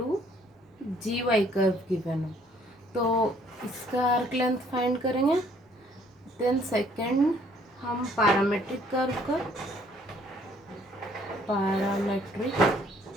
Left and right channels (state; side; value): normal; both; correlation 0.62